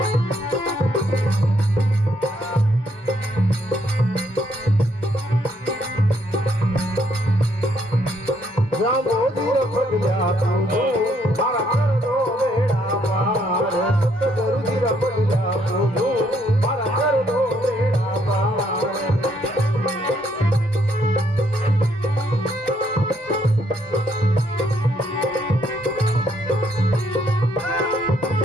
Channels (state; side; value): normal; both; correlation 0.71